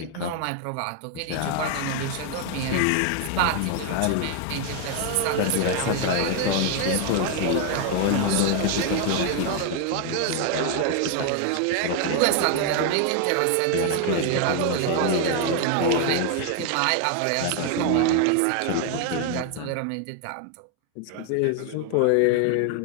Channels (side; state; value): both; different; correlation 0.00